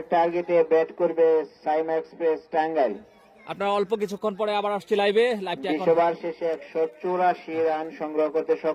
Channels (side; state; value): both; identical; correlation 1.00